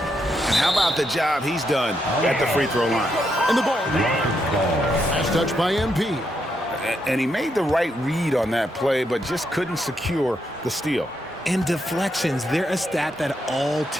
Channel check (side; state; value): both; normal; correlation 0.80